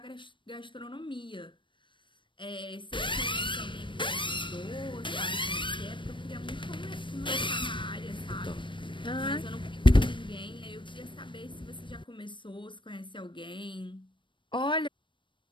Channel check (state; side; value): late; right; 0.24 ms